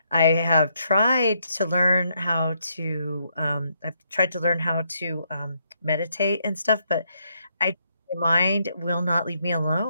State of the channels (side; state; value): both; inverted; correlation -0.75